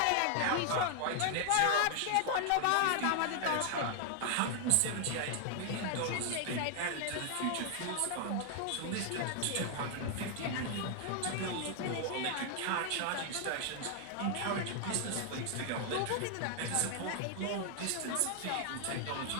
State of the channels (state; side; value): different; both; correlation 0.00